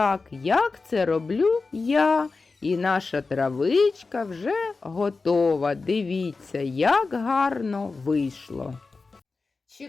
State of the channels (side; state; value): right; quieter; 4.1 dB